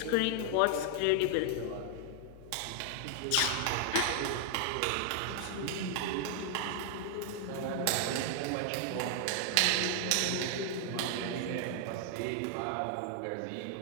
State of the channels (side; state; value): both; different; correlation 0.00